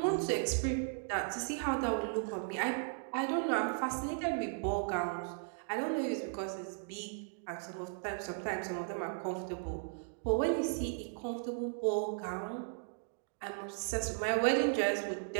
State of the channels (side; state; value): left; silent; digital silence